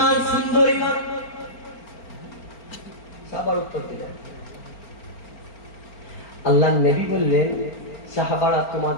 সুন্দর ঈমান। সাহাবার উত্তর দিলেন, আল্লাহর নবী বললেন, সাহাবারা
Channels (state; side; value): late; right; 4.4 ms